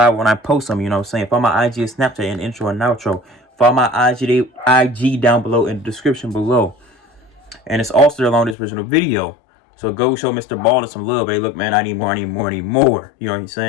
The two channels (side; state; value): right; drops out; at 8.6 s